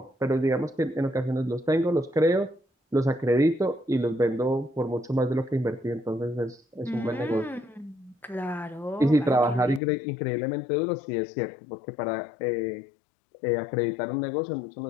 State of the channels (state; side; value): drops out; right; at 9.8 s